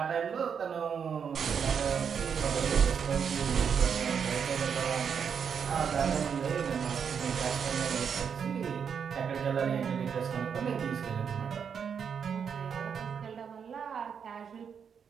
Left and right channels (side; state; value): left; quieter; 7.0 dB